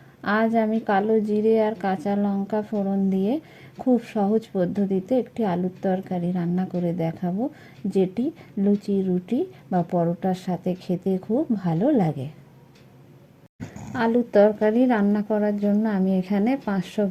আজ আমি কালো জিরে আর কাঁচা লঙ্কা ফোড়ন দিয়ে খুব সহজ পদ্ধতিতে একটি আলুর তরকারি রান্না করে দেখাবো, যেটি লুচি, রুটি বা পরোটার সাথে খেতে খুব ভালো লাগে। আলুর তরকারি রান্না করার জন্য আমি এখানে 500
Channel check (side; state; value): both; identical; correlation 1.00